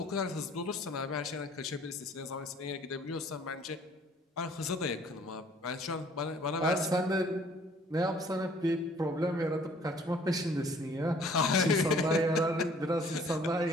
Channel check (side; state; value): both; normal; correlation 0.56